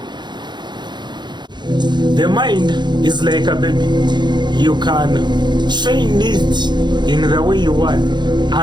The mind is like a baby. You can train it in the way you want,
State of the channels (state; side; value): late; left; 0.21 ms